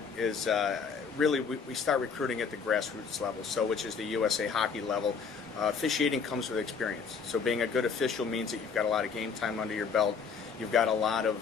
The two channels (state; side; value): quieter; right; 5.8 dB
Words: is really we start recruiting at the grassroots level, which is the USA Hockey level. Officiating comes with experience. So being a good official means that you've got a lot of game time under your belt. You've got a lot